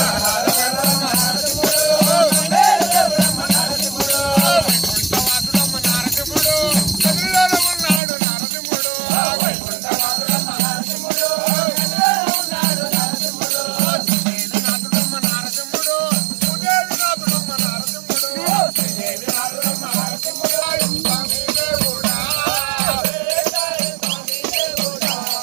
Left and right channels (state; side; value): drops out; left; at 8.0 s